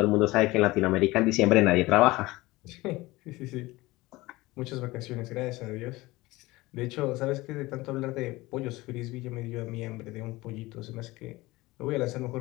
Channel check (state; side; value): quieter; right; 20.3 dB